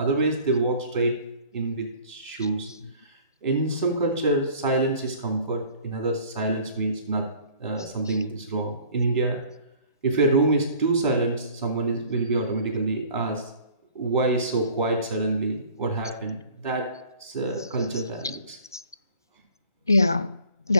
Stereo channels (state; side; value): inverted; both; correlation -0.51